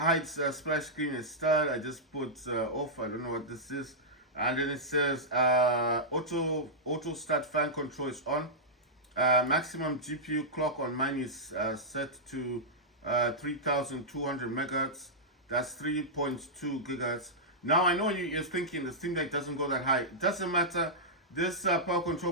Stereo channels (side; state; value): both; normal; correlation -0.11